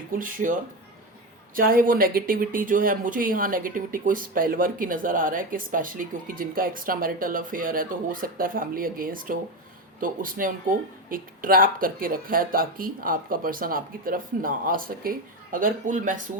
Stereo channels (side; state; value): both; normal; correlation 0.16